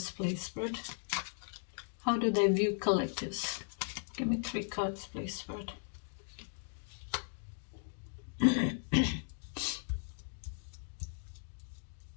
please, Spirit? How do they view collectives? Give me 3 cards, please, Spirit.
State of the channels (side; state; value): right; silent; digital silence